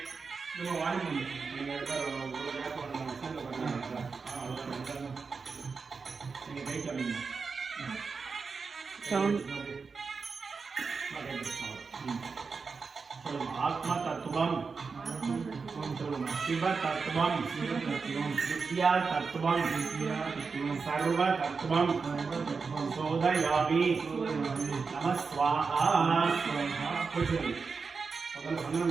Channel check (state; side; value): quieter; left; 4.9 dB